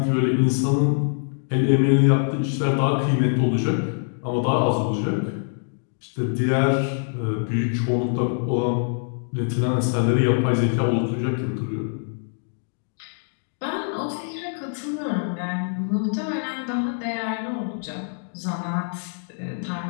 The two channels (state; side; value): silent; right; digital silence